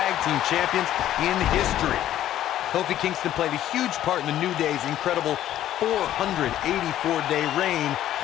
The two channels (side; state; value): right; quieter; 12.4 dB